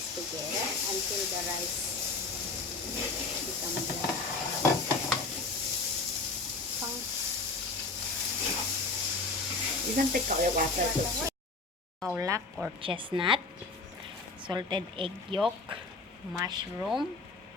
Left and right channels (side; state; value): right; quieter; 3.7 dB